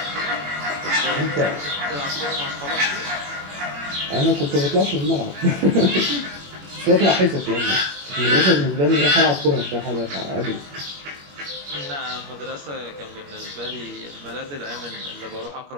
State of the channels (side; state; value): left; late; 21 ms